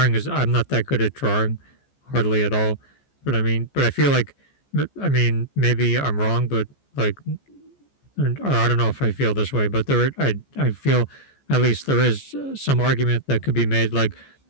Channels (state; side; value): late; right; 14 ms